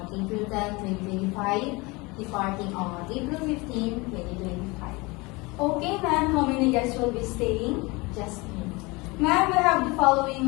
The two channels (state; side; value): quieter; right; 25.0 dB